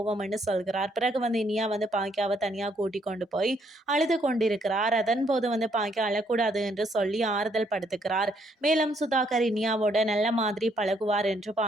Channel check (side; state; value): both; normal; correlation 0.70